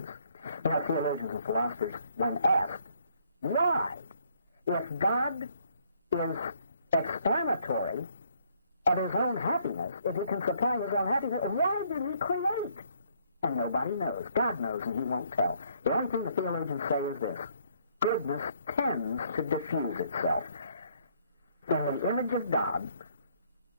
You know, theologians and philosophers, when asked, why, if God is explanatory of his own happiness, if he can supply his own happiness, why did he create? And nobody knows. God knows, and he won't tell. The only thing the theologians say is this: goodness tends to diffuse itself. In the image of God,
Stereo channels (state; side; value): inverted; both; correlation -0.67